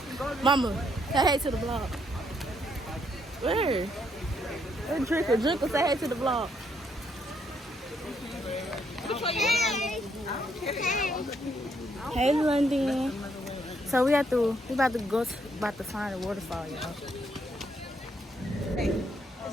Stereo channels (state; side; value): normal; both; correlation 0.73